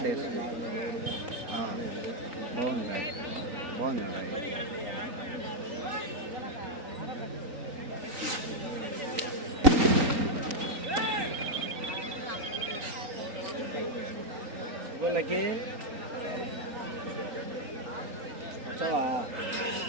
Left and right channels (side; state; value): left; late; 3.8 ms